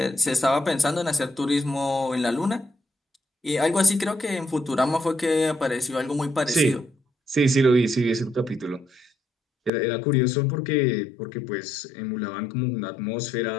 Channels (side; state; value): right; drops out; at 9.7 s